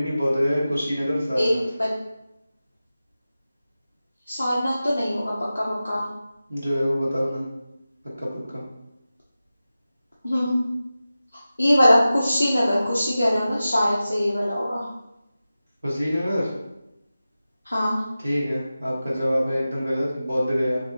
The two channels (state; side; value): inverted; both; correlation -0.95